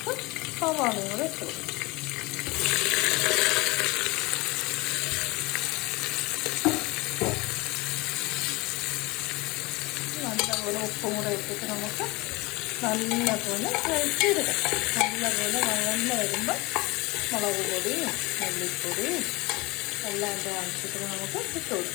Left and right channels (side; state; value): right; quieter; 24.1 dB